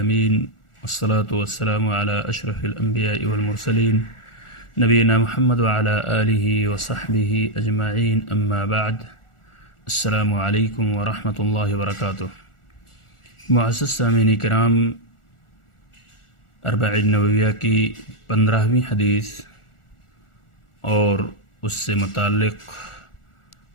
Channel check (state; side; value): late; right; 1.4 ms